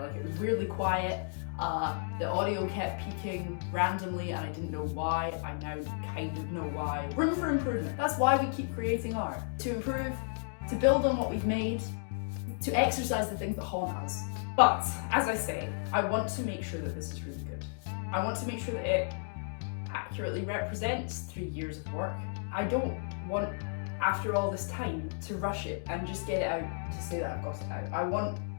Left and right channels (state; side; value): silent; right; digital silence